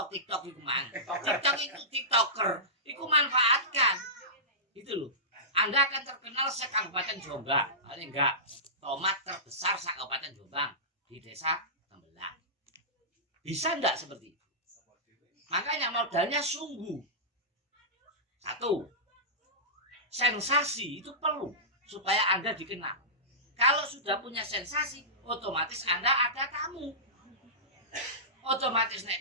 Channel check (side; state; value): both; normal; correlation -0.18